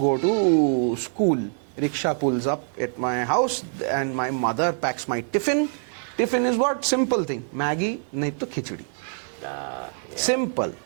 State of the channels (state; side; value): silent; left; digital silence